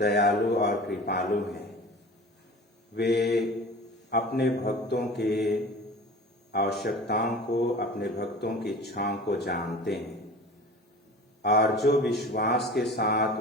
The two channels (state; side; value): normal; both; correlation 0.39